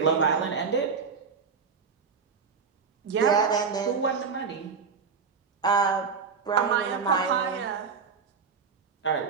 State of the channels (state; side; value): quieter; left; 5.6 dB